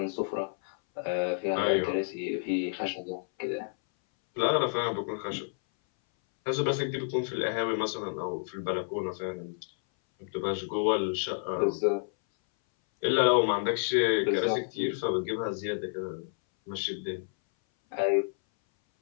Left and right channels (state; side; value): silent; right; 58 dB below the other